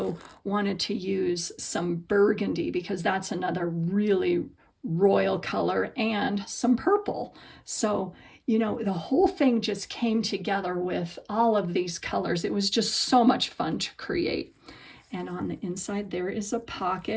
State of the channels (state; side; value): identical; both; correlation 1.00